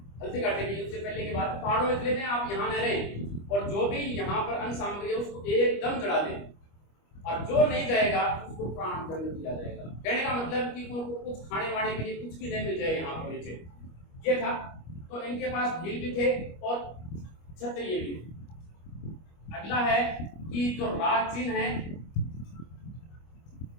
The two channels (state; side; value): late; right; 25 ms